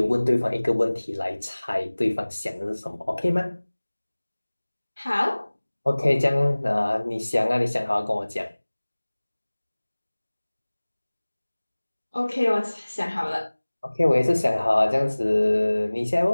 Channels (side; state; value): both; inverted; correlation -1.00